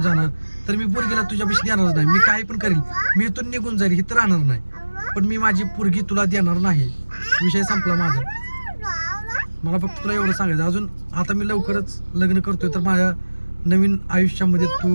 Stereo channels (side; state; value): both; inverted; correlation -1.00